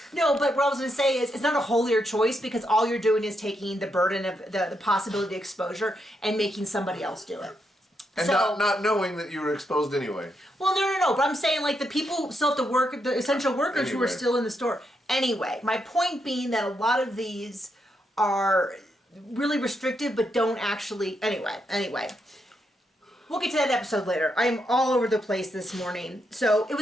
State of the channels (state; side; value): normal; both; correlation 0.81